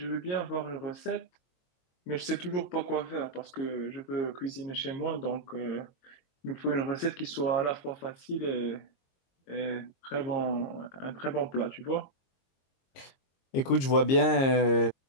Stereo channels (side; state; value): right; late; 22 ms